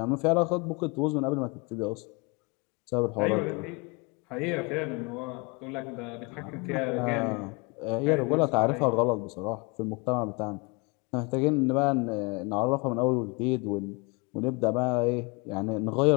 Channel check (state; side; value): quieter; right; 29.3 dB